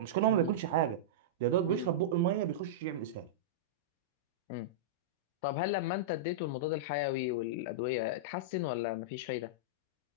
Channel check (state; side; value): normal; both; correlation -0.11